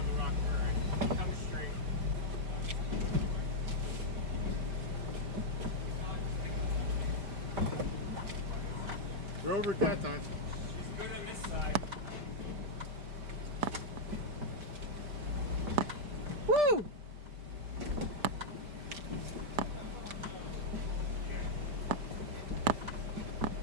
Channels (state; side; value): late; left; 5.1 ms